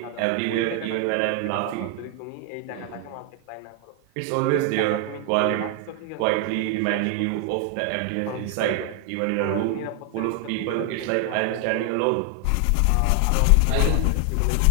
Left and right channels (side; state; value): both; different; correlation 0.00